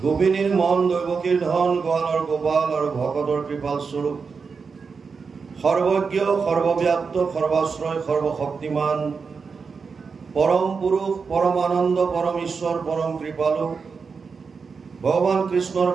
গোপিনীৰ মন, দৈৱকীৰ ধন, গোৱালৰ গোপাল আৰু ভকতৰ কৃপাল স্বৰূপ, সৰ্বজ্ঞ, সৰ্বব্যাপ্ত, সৰ্বাশ্ৰয়, সৰ্বশক্তিমান, পৰম পুৰুষ, পৰমানন্দ, পৰম ঈশ্বৰ, পৰম কৃপালু ভগৱান কৃষ্ণৰ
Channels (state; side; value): quieter; left; 5.2 dB